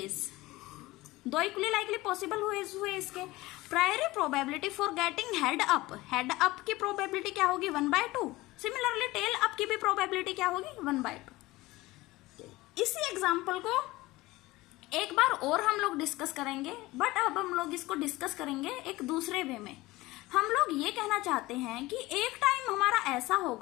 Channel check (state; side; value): quieter; right; 19.5 dB